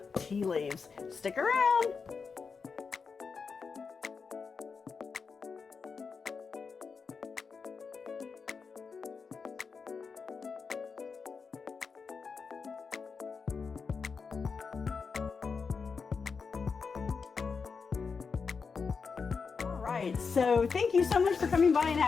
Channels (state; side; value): quieter; right; 5.3 dB